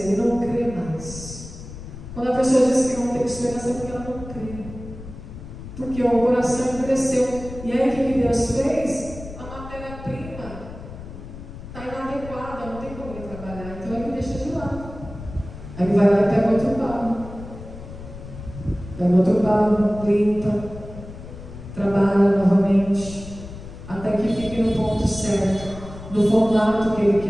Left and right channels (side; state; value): left; noise; rumble, 13 dB below the sound